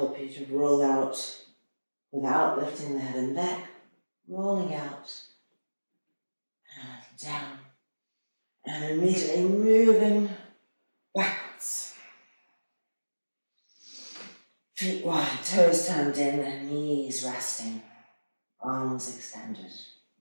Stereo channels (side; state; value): both; inverted; correlation -1.00